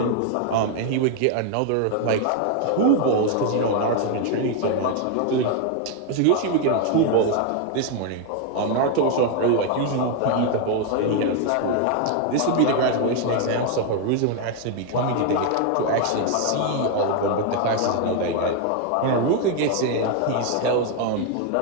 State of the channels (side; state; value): both; different; correlation 0.01